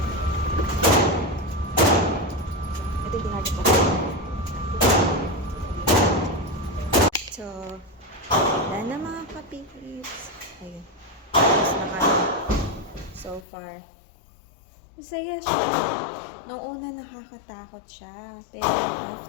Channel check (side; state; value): right; drops out; at 13.5 s